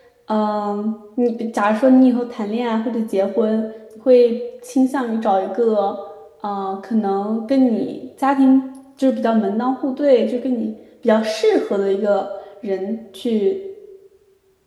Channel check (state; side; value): identical; both; correlation 1.00